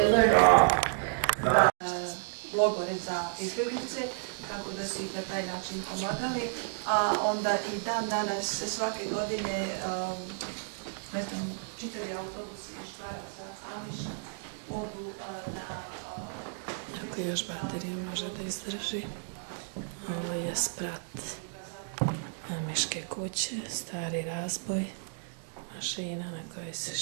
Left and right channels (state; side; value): silent; left; digital silence